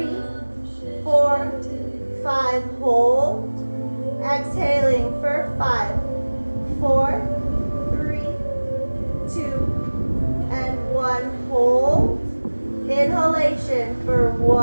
4, 5, hold. Exhaling for 5, 4, 3, 2, and 1, hold. Inhalation for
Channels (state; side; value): inverted; both; correlation -1.00